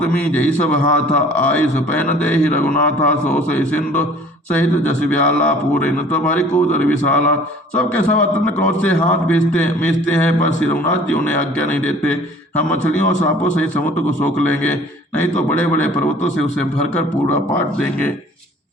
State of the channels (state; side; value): normal; both; correlation 0.50